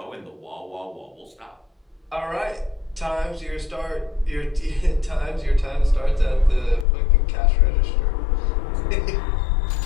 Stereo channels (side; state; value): right; drops out; at 6.9 s